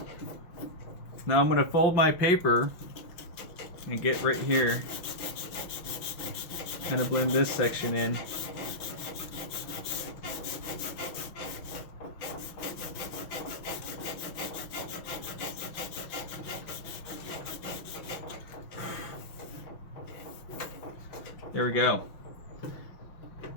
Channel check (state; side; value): late; right; 6.0 ms